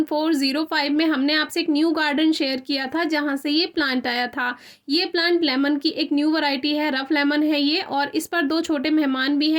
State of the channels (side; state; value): both; identical; correlation 1.00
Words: में हमने आपसे एक new garden share किया था जहां से ये प्लांट आया था। ये प्लांट लेमन की एक न्यू वैरायटी है, रफ लेमन है ये। और इस पर दो छोटे मेहमान भी